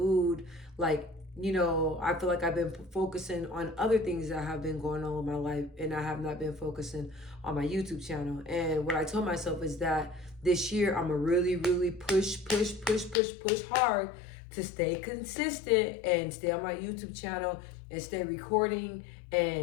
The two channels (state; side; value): drops out; right; at 13.2 s